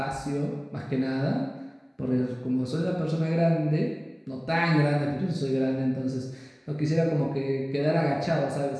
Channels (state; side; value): identical; both; correlation 1.00